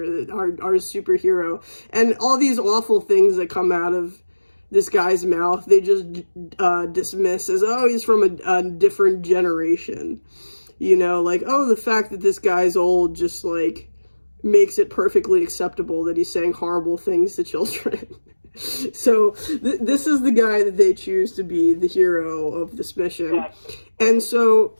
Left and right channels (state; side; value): inverted; both; correlation -1.00